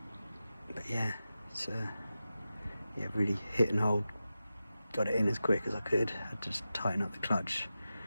But yeah, it's yeah, really hit and hold. Got it in as quick as I could. I just tighten up the clutch.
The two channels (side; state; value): both; inverted; correlation -0.92